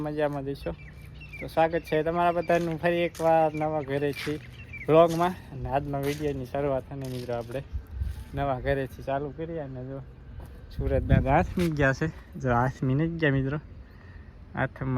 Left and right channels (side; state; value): both; identical; correlation 1.00